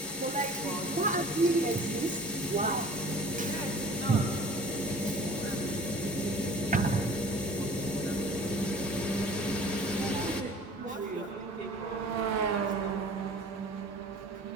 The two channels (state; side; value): normal; both; correlation 0.46